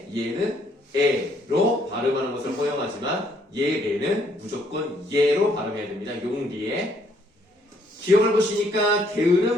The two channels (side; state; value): both; normal; correlation 0.68